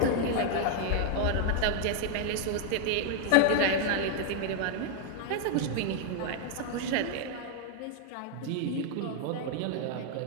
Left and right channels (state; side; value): different; both; correlation 0.00